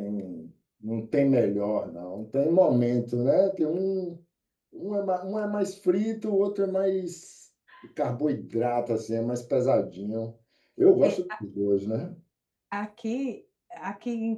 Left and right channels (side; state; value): both; identical; correlation 1.00